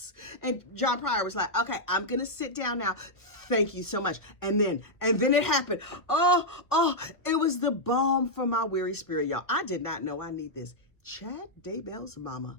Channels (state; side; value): late; right; 1.3 ms